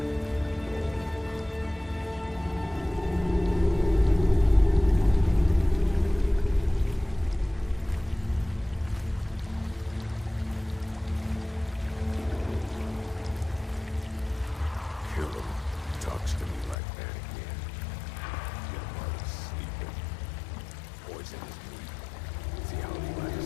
Kill him. Talks to me like that again. Get him while he's sleeping. Poison his meat. See how he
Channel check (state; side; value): drops out; right; at 16.8 s